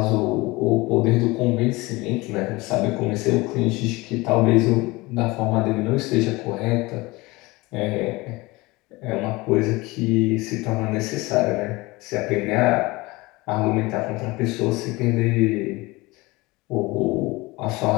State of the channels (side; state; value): right; quieter; 22.4 dB